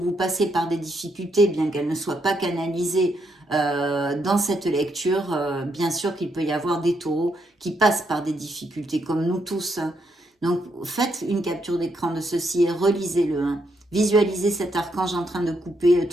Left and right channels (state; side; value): normal; both; correlation 0.77